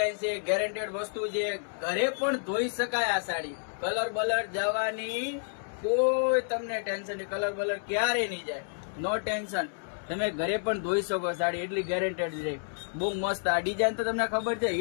છે, ગેરંટેડ વસ્તુ છે. ઘરે પણ ધોઈ શકાય આ સાડી. કલર બલર જવાની કોઈ તમને ટેન્શન નહીં. કલર બલર ક્યારે નહીં જાય, નો ટેન્શન. તમે ઘરે પણ ધોઈ શકો સાડી, એટલી ગેરંટેડ છે. બહુ મસ્ત. આ ડિઝાઇન તો તમને ખબર છે,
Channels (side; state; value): right; silent; digital silence